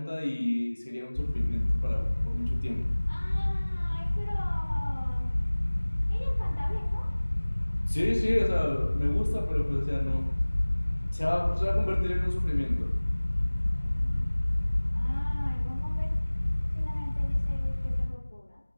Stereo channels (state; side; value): inverted; both; correlation -1.00